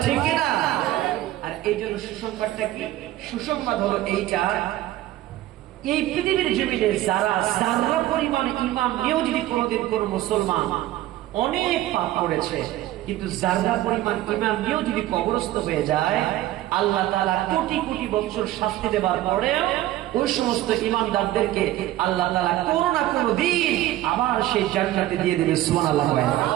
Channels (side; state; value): left; quieter; 15.0 dB